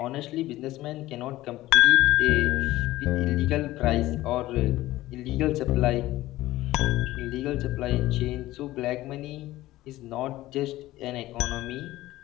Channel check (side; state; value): right; quieter; 16.5 dB